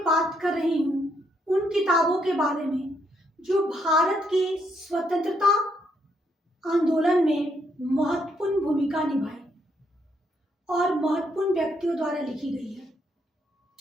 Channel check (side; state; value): both; normal; correlation 0.75